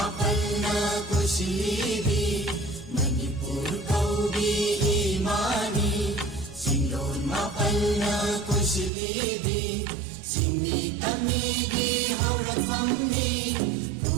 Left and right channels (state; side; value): drops out; left; at 8.9 s